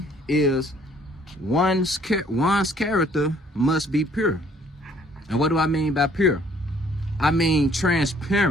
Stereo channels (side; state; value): both; normal; correlation 0.60